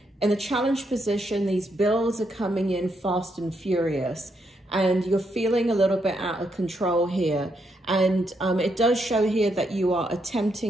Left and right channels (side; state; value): both; normal; correlation 0.78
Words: in the challenge position. These bills are coming in fast and furious, and you're feeling a little bit out of control here. And it does show here that you are